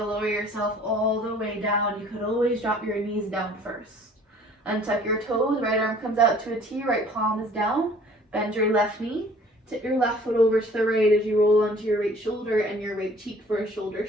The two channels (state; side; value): normal; both; correlation 0.53